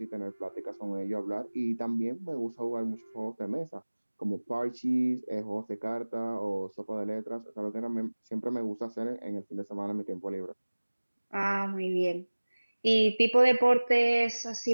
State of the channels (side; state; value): both; inverted; correlation -1.00